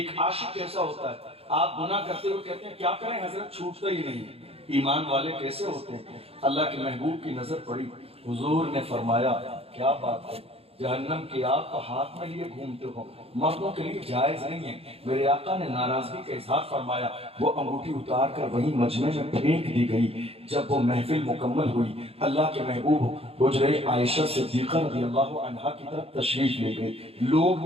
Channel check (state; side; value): late; left; 0.28 ms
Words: عاشق کیسا ہوتا ہے۔ آپ گناہ کرتے ہوئے کہتے ہیں کیا کریں حضرت، چھوٹتا ہی نہیں ہے۔ ایمان والے کیسے ہوتے ہیں؟ اللہ کے محبوب کی نظر پڑی، حضور نے فرمایا کیا بات ہے، جہنم کی آگ کو ہاتھ میں لیے گھومتے ہو، مردوں کے لیے جائز نہیں ہے۔ میرے آقا نے ناراضگی کا اظہار فرمایا، وہ انگوٹھی اتار کر وہیں مجمع میں پھینک دی گئی۔ جب وہ محفل مکمل ہوئی، اللہ کے محبوب حجرہ عائشہ صدیقہ رضی اللہ عنہا کی طرف تشریف لے گئے۔ لوگ